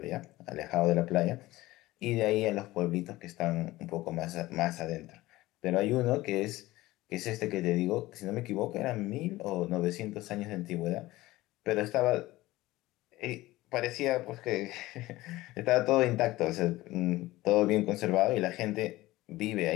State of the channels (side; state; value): right; quieter; 18.0 dB